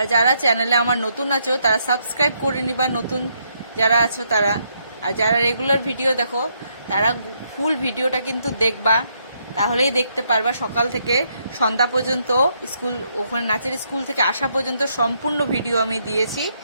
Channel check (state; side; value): inverted; both; correlation -0.75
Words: যারা চ্যানেলে আমার নতুন আছো তারা সাবস্ক্রাইব করে নিবা, নতুন যারা আছো তারা। আর যারা রেগুলার ভিডিও দেখো তারা ফুল ভিডিওটা কিন্তু দেখবা, তাহলেই দেখতে পারবা। সকাল থেকে সন্ধ্যা পর্যন্ত ওখানে নাচের স্কুল থেকে আসা পর্যন্ত সম্পূর্ণ ভিডিও আমি দিয়েছি,